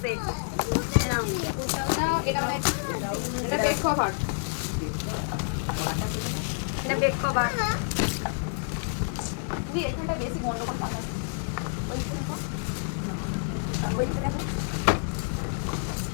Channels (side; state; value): right; silent; digital silence